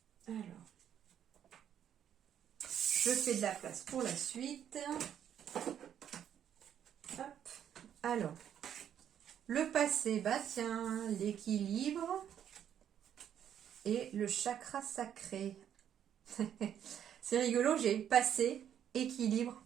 Alors. Je fais de la place pour la suite. Hop. Alors, le passé, bah tiens, l'équilibre et le chakra sacré. C'est rigolo, j'ai passé, équilibre,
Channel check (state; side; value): quieter; left; 9.5 dB